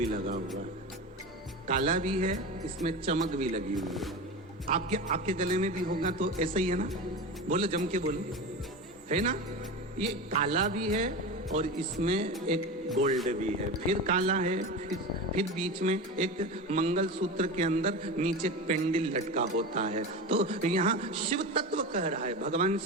लगा हुआ है, काला भी है, इसमें चमक भी लगी हुई है। आपके गले में भी होगा तो ऐसा ही है ना? बोलो, जम के बोलो, है ना? ये काला भी है और इसमें एक गोल्ड भी है, फिर काला है, फिर बीच में एक मंगलसूत्र के अंदर नीचे पेंडिल लटका होता है। तो यहाँ शिव तत्व कह रहा है, भगवान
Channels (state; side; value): normal; both; correlation 0.26